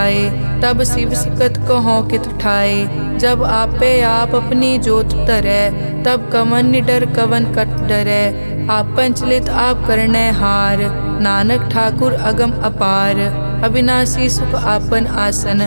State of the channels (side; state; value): both; inverted; correlation -1.00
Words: तब शिव सकत कहो कित ठाए। जब आपे आप अपनी जोत तरै, तब कवन निडर कवन कट डरै। आपन चलित आप करने हार, नानक ठाकुर अगम अपार। अविनाशी सुख आपन आसन,